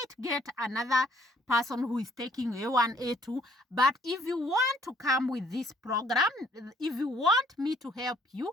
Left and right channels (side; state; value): both; normal; correlation 0.63